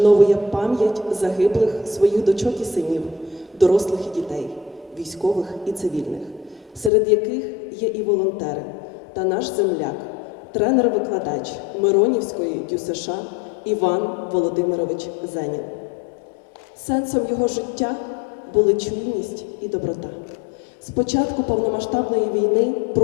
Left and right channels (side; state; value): right; drops out; at 6.9 s